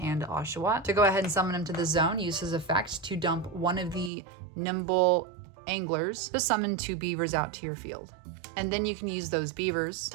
Oshawott to go ahead and summon him to the zone. Use his effect to dump one of the Nimble Anglers to summon 2 beavers out to your field. And then you can use those beavers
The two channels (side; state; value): left; drops out; at 4.1 s